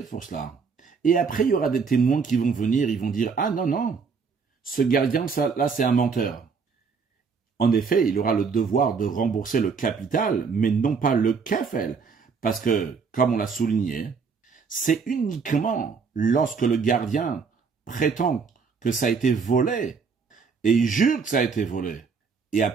pour cela. Et après, il y aura des témoins qui vont venir, ils vont dire, ah non, non, ce gardien, là, c'est un menteur. En effet, il aura le devoir de rembourser le capital, mais non pas le kefel. Parce que, comme on l'a souligné, c'est uniquement lorsque le gardien prétend que ça a été volé, et il jure que ça a été volé, et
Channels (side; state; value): left; quieter; 5.4 dB